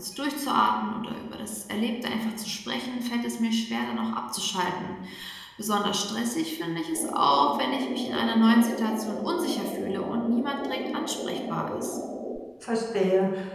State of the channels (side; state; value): both; identical; correlation 1.00